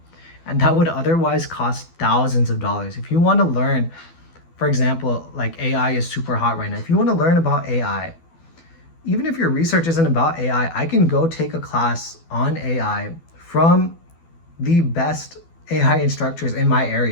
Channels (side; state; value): right; late; 12 ms